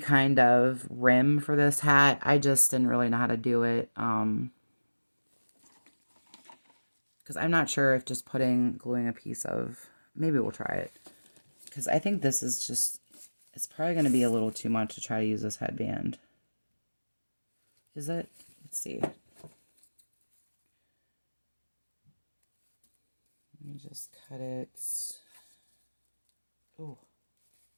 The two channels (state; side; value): inverted; both; correlation -1.00